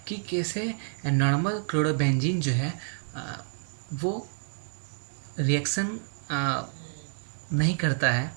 कि कैसे नॉर्मल क्लोरोबेंजीन जो है वो रिएक्शन नहीं करता है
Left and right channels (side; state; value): left; silent; digital silence